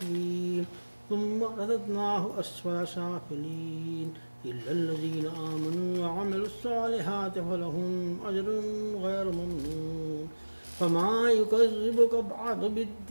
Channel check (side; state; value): both; inverted; correlation -1.00